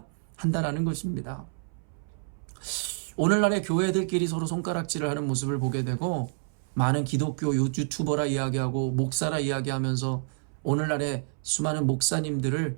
한다라는 것입니다. 오늘날의 교회들끼리 서로 손가락질을 하는 모습을 보게 되고, 많은 기독교 유튜버라 이야기하고 목사라 이야기하면서 오늘날의 수많은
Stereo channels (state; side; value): silent; left; 59 dB below the other